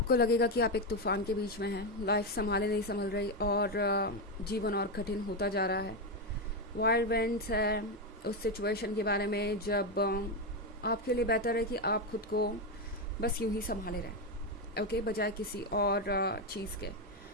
लगेगा कि आप एक तूफान के बीच में हैं, लाइफ संभाले नहीं संभल रही और जीवन और कठिन होता जा रहा है। वाइल्ड विंड्स है उस सिचुएशन के बारे में जब आपके लिए बेहतर है कि आप खुद को बस यूं ही संभाले रहें, ओके, बजाय किसी और चीज़ के।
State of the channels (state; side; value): normal; both; correlation 0.08